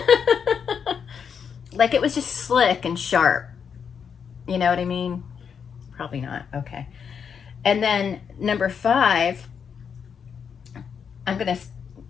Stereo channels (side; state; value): right; quieter; 6.9 dB